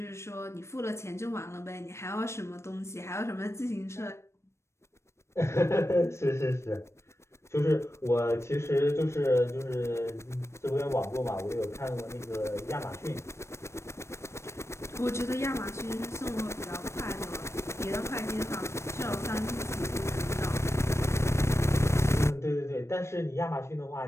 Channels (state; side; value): late; right; 0.13 ms